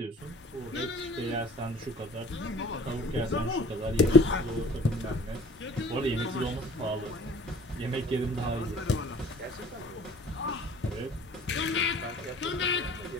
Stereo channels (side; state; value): both; normal; correlation 0.49